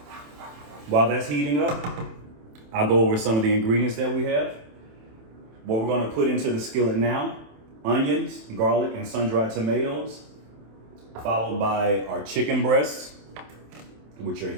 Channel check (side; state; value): left; late; 27 ms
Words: While that's heating up, I'll go over some of the ingredients that we have. What we're going to put into the skillet now: onions, garlic, and sun-dried tomatoes, followed by our chicken breasts, which are